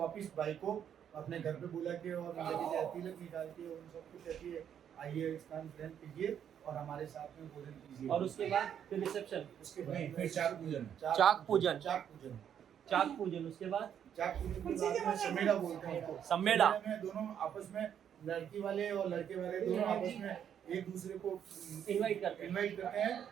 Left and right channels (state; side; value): quieter; left; 9.0 dB